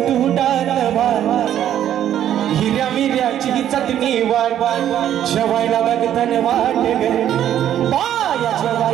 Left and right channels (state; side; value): quieter; left; 10.8 dB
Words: तू डाल भात, हिऱ्या मिऱ्याची ही चटणी वाट. जेवायला बघताना वाट ग बाया,